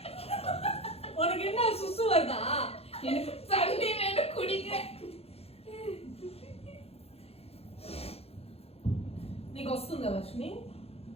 உனக்கு என்ன சுசு வருதா? எனக்கு தண்ணி வேணும் குடிக்க. నీకు వస్తుందా వర్షిని?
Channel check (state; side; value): late; right; 0.29 ms